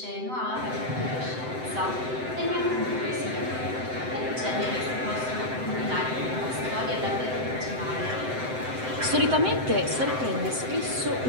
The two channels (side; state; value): left; late; 7.8 ms